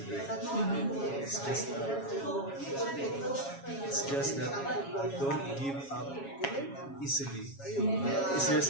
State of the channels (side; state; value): right; late; 7.3 ms